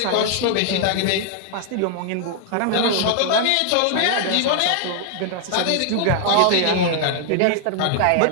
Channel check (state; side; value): different; both; correlation 0.00